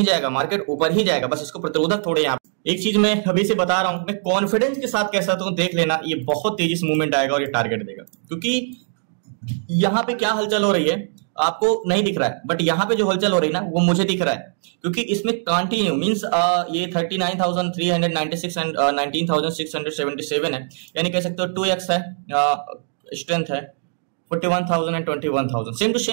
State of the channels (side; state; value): left; silent; digital silence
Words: जाएगा, मार्केट ऊपर ही जाएगा, बस इसको प्रतिरोधक थोड़े यहाँ। एक चीज मैं अभी से बता रहा हूं, मैं कॉन्फिडेंस के साथ कह सकता हूं, देख लेना ये बहुत तेजी से मूवमेंट आएगा और ये टारगेट देगा, क्योंकि यहाँ पे क्या हलचल हो रही है आपको नहीं दिख रहा है, बट यहाँ पे जो हलचल हो रही है ना वो मुझे दिख रहा है, क्योंकि इसमें कंटिन्यू मींस ये 39,396 एंड 19,677 है, यानी कह सकते हो 2x है, स्ट्रेंथ है 41,000 and 21,000, same to